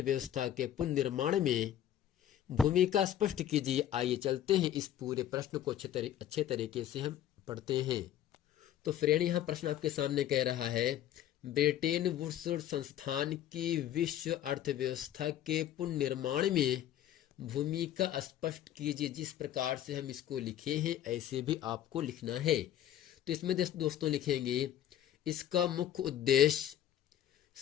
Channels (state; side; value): quieter; right; 11.4 dB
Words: के पुनर्निर्माण में भूमिका स्पष्ट कीजिए। आइए चलते हैं इस पूरे प्रश्न को अच्छे तरीके से हम पढ़ते हैं। तो फ्रेंड यहाँ प्रश्न आपके सामने कह रहा है ब्रेटन वुड्स संस्थान की विश्व अर्थव्यवस्था के पुनर्निर्माण में भूमिका स्पष्ट कीजिए। जिस प्रकार से हम इसको लिखे हैं ऐसे भी आपको लिखना है। तो इसमें दोस्तों लिखेंगे इसका मुख्य उद्देश्य